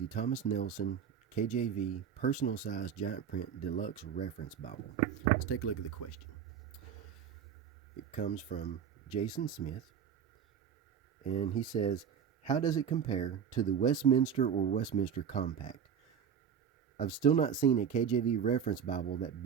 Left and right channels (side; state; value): left; quieter; 7.8 dB